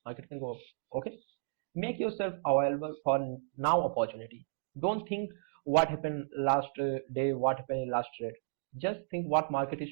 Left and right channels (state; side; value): silent; left; digital silence